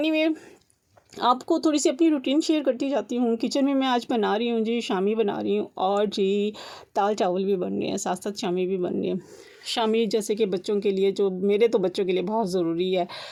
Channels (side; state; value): both; identical; correlation 1.00